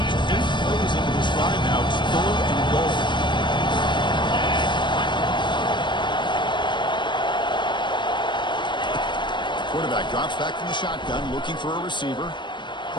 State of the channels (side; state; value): right; late; 0.22 ms